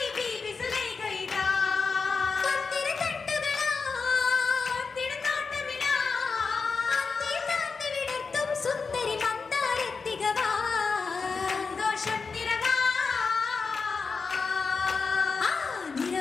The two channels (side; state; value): right; quieter; 4.8 dB